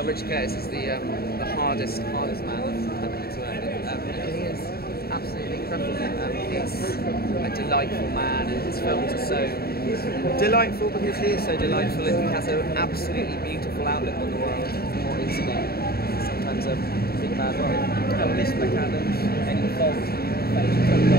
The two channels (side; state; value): right; late; 0.45 ms